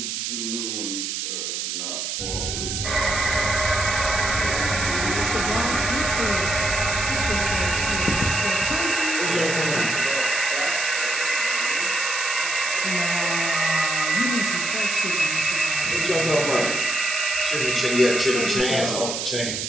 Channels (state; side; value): noise; right; hiss, 3 dB below the sound